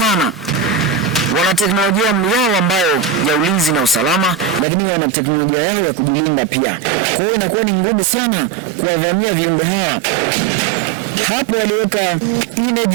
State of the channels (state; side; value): drops out; left; at 4.7 s